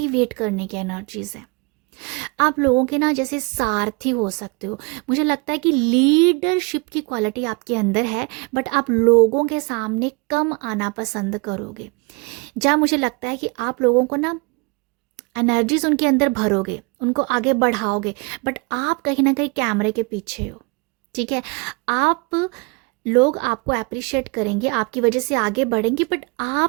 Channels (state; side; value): quieter; left; 29.6 dB